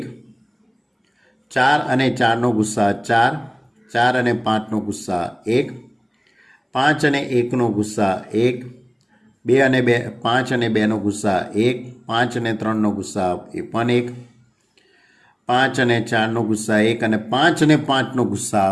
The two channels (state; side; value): identical; both; correlation 1.00